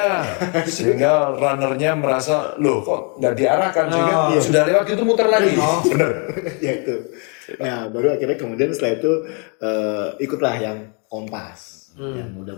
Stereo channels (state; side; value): quieter; right; 36.4 dB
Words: sehingga runnernya merasa loh kok nggak diarahkan sehingga sudah lewat itu muter lagi. Benar. Ya itu. Nah baru akhirnya kemudian setelah itu ikutlah yang Kompas yang udah